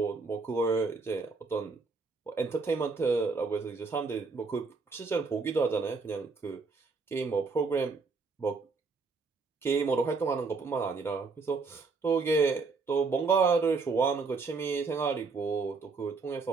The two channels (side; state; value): left; quieter; 4.4 dB